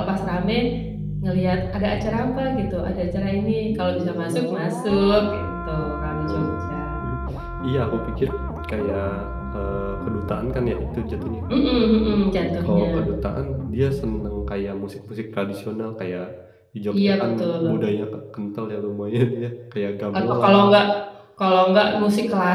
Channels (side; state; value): both; identical; correlation 1.00